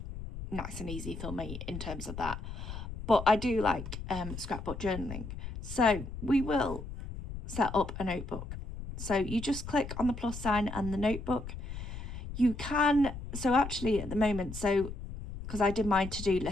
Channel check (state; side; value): noise; left; rumble, 9 dB below the sound